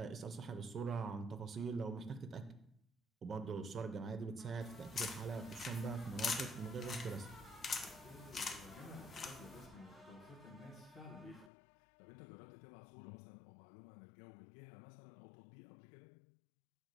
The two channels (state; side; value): drops out; right; at 11.5 s